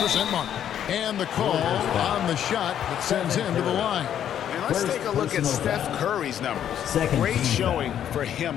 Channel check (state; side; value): quieter; right; 9.9 dB